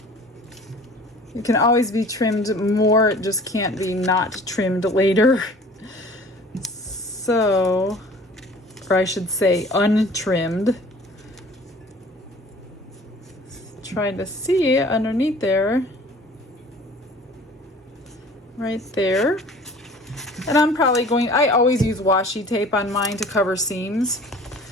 You can always be trimmed more, it just can't be not trimmed later. So, or I should say untrimmed. Trying to see underneath there. Right there. And I'm probably going, I always use washi tape on mine to cover seams.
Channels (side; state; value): both; normal; correlation 0.48